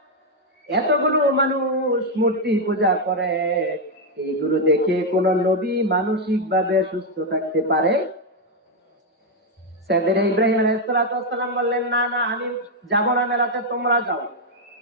এতগুলো মানুষ মূর্তি পূজা করে, এইগুলো দেখে কোন নবী মানসিক ভাবে সুস্থ থাকতে পারে? সাইয়েদনা ইব্রাহিম আলাইহিস সালাম বললেন, না না, আমি যাব না মেলাতে, তোমরা যাও।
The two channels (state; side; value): normal; both; correlation 0.02